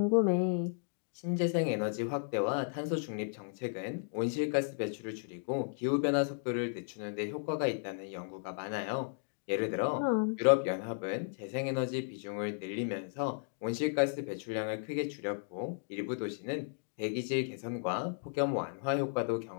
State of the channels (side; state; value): right; silent; digital silence